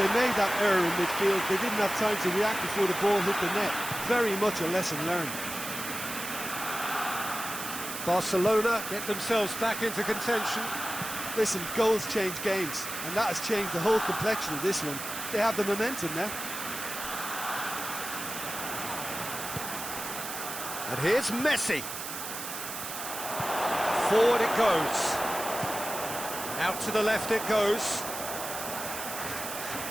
made that error in midfield, they didn't have time to react before the ball hit the net. Very much a lesson learned. Barcelona get themselves back into contention. Listen, goals change games, and that has changed the whole complexion of this one. They have the momentum now. And here's Messi. Forward it goes. Out to the left it goes.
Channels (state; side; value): noise; right; hiss, 7 dB below the sound